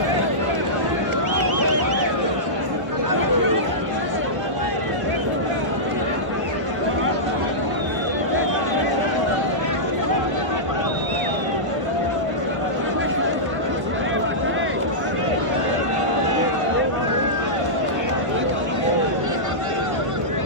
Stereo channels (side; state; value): left; late; 1.0 ms